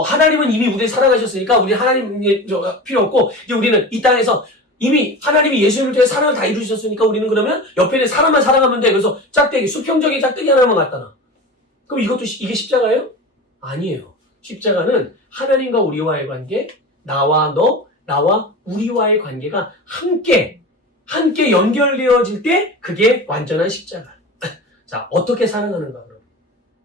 이미 우리를 사랑하셨으니까, 우리 하나님이 필요 없고, 이제 우리는 이 땅에서 이미 하나님이 예수님을 통해 사랑을 다 이루셨으니까 우리는 그러면 옆에 있는 사람만 사랑하면 돼. 그래서 수평적인 짝대기 하나만 갖다 놔. 그럼 이게 십자가예요? 아니에요. 십자가는 하나님과 우리와의 관계, 나와 우리와의 관계가 함께 연결되어질 때 그게 완전한 십자가. 자, 어떻게 사랑하는가 그럼?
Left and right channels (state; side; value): normal; both; correlation 0.31